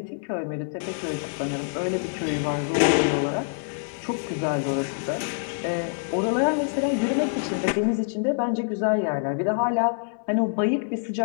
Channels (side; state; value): right; silent; 61 dB below the other